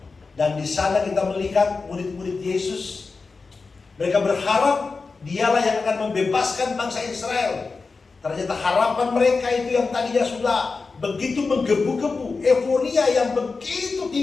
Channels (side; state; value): right; quieter; 4.3 dB